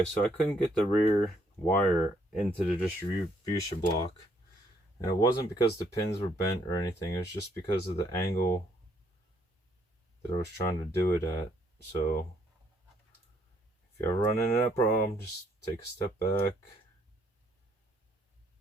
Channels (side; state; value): both; normal; correlation 0.69